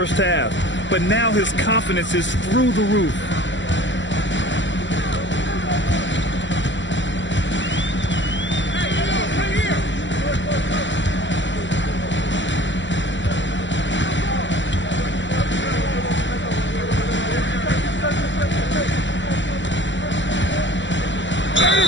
half, but now his confidence is through the roof.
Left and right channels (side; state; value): right; late; 0.54 ms